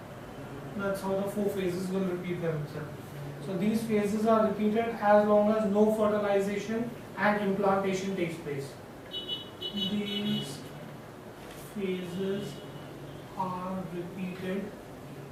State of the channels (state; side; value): identical; both; correlation 1.00